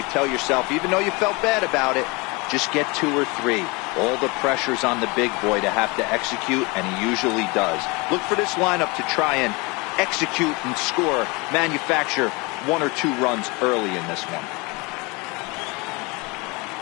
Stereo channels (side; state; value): right; quieter; 26.9 dB